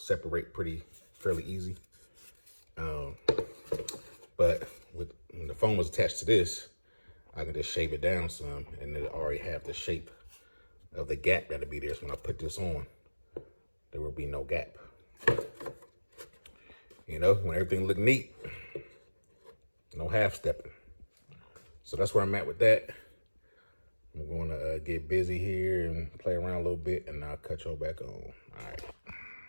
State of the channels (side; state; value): both; inverted; correlation -1.00